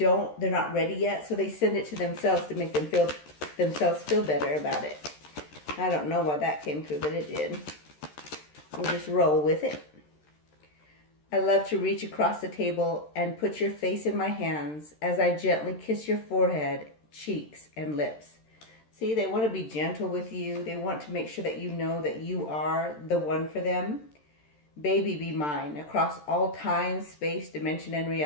not ready yet, so they send it to themselves to make themselves feel better about it. I don't know why that came through, but it did. We'll just roll with it. I love to reach across the table and put your face in my hands as I gently kiss your forehead, cheeks, and lips. See, they want to be gentle with you. They want to make sure that you know that you are the one for them. Baby, be mine, across all time, space, dimension, and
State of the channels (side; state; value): right; late; 13 ms